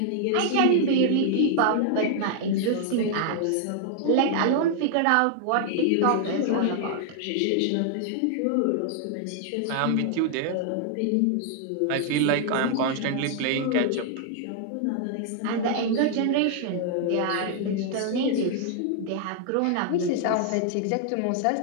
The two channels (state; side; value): different; both; correlation 0.00